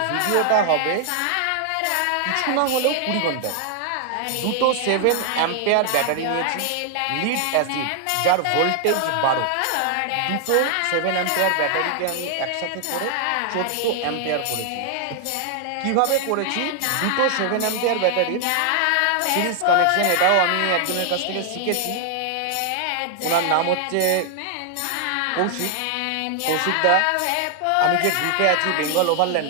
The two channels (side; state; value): both; different; correlation 0.00